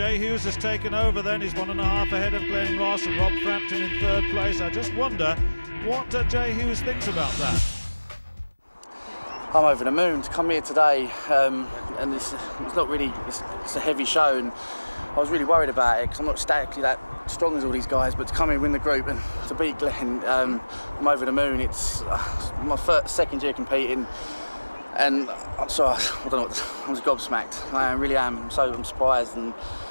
Hughes has taken over then. He's 1.5 ahead of Glenn Ross and Rob Frampton in third place. I just wonder what Jay Hughes thinks about that. I'm over the moon to come here today, and it's not really, it's a heavy show, and I was really worried about it because I'm not statically that strong as all these guys, but to come in and win the group and to beat Glenn, I'm over the moon. It's my second year competing, and I'm sorry, I don't know. I was gobsmacked. I really am. I'm surprised, and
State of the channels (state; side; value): inverted; both; correlation -1.00